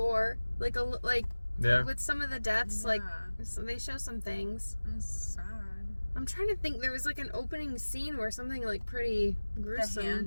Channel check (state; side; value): inverted; both; correlation -1.00